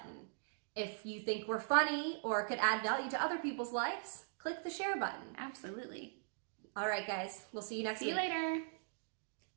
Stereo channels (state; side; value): silent; left; digital silence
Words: If you think we're funny or could add value to other people's lives, click the share button. Absolutely. All right, guys, we'll see you next week. See you later.